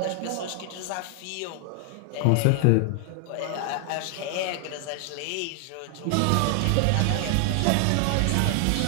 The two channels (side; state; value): both; different; correlation 0.00